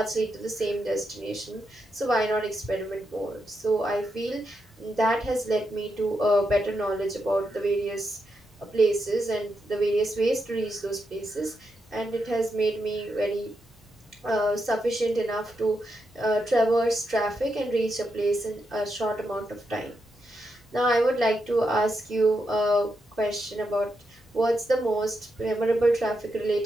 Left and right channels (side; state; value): both; normal; correlation 0.84